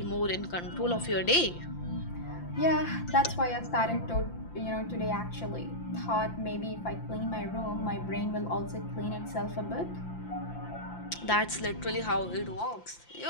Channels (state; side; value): late; right; 5.8 ms